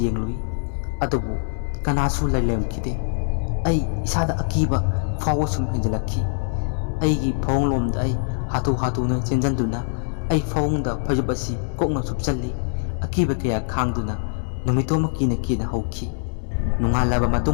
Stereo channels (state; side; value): silent; right; digital silence